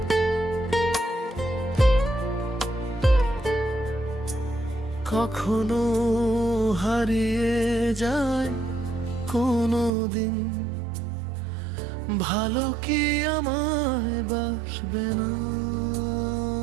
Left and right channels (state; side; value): drops out; left; at 9.9 s